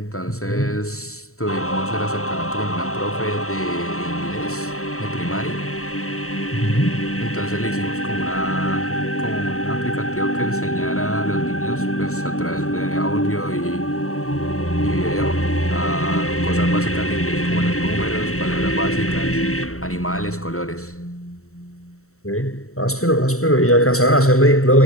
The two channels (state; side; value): late; right; 0.64 ms